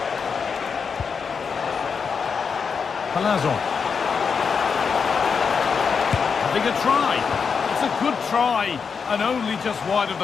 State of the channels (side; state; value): right; quieter; 5.9 dB